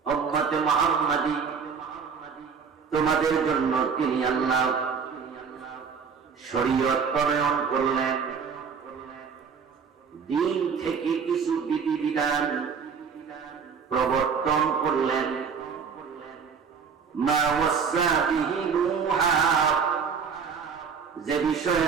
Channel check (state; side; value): quieter; left; 6.1 dB